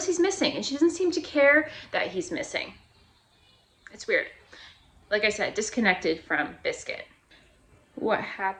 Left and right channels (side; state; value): both; identical; correlation 1.00